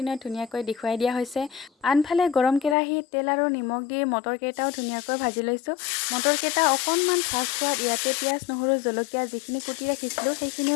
ধুনীয়াকৈ দেখুৱাই দিয়া হৈছে। আনফালে গৰম কেৰাহীত তেল আৰু নিমখ দি মটৰকেইটাও ধুনীয়াকৈ ভাজি লৈছোঁ। মটৰকেইটা অকণমান ভাজ খোৱাত ইয়াতে পিঁয়াজ, নহৰু, জলকীয়া যিখিনি কুটি ৰাখিছিলোঁ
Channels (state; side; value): drops out; right; at 2.8 s